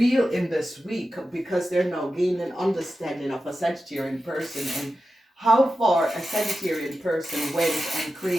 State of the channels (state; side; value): normal; both; correlation 0.92